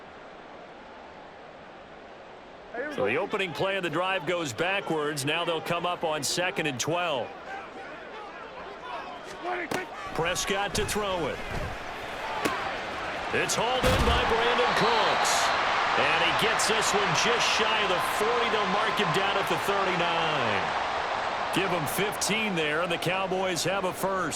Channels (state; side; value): identical; both; correlation 1.00